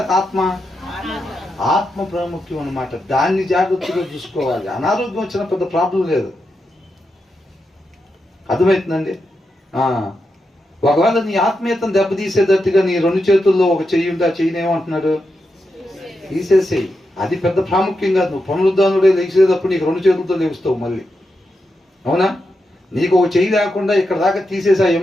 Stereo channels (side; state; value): both; normal; correlation 0.86